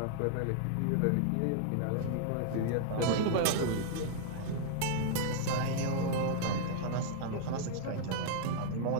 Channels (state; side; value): different; both; correlation -0.01